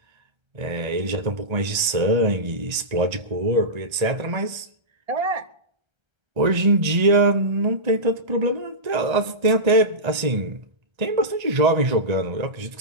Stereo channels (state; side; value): late; left; 1.3 ms